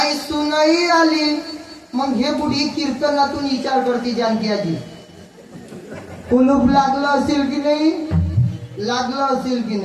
सुनही आली. मग हे बुढी कीर्तनातून विचार करते जानकी आजी कुलूप लागलं असेल की नाही, लागलं असेल की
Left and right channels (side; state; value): both; identical; correlation 1.00